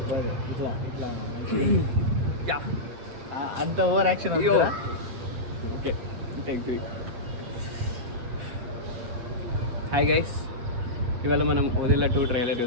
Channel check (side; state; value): left; late; 8.3 ms